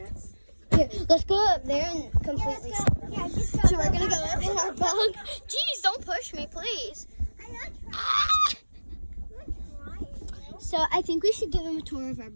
Here, let's go up there and completely. Yeah, just go. So we're gonna go up in our bunk. Jeez, don't push me, please. I'm not trying. Ah! I'm not trying. So I think we should give him a tour of our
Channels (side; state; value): both; inverted; correlation -1.00